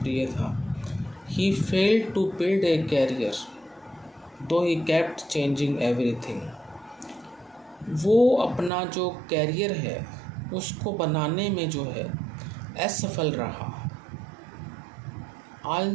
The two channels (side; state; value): left; drops out; at 8.7 s